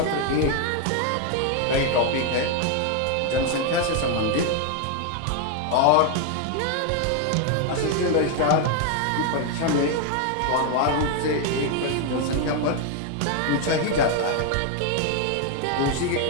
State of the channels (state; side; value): different; both; correlation 0.01